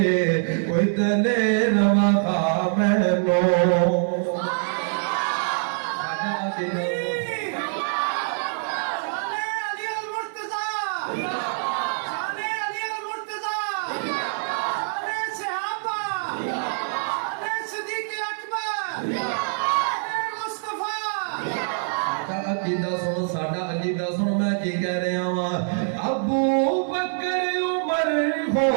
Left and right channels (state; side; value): silent; left; 62 dB below the other